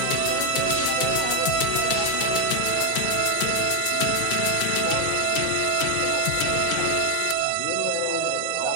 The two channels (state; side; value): different; both; correlation 0.02